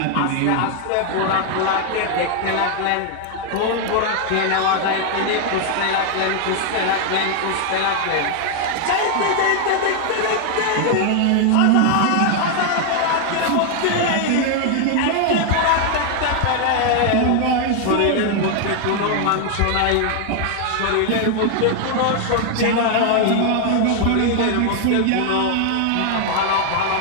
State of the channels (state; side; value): different; both; correlation 0.00